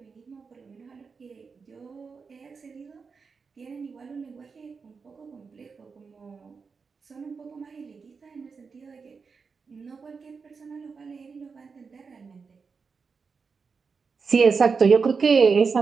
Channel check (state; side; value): quieter; left; 5.2 dB